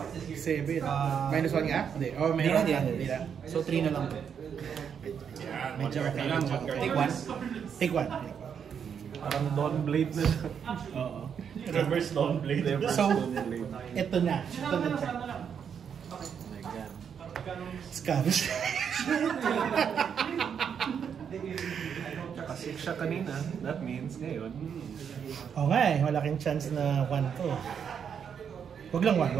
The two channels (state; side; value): quieter; left; 7.5 dB